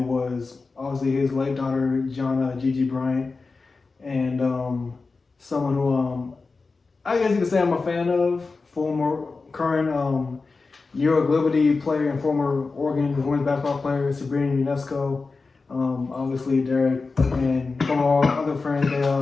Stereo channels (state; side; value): quieter; right; 4.1 dB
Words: obviously his late daughter, Gianna Gigi Bryant, and someone who I guess you could say I'm a fan of, current Euro Liberty player and former Oregon women's basketball player, Sabrina Ionesco. Obviously Derek and some of our other friends,